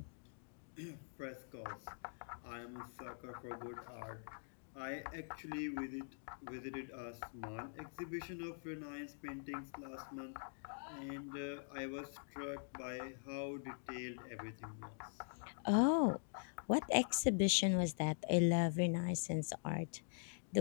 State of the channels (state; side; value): silent; right; digital silence